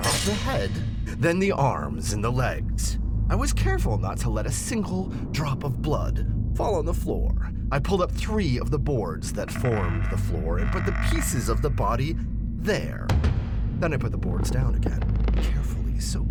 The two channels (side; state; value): both; identical; correlation 1.00